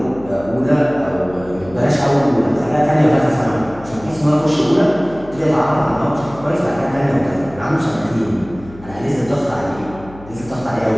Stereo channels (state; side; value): noise; left; hum, 19 dB below the sound